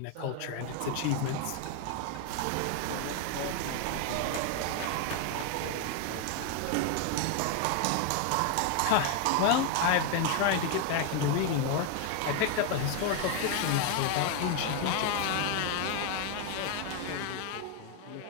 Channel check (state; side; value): different; both; correlation 0.01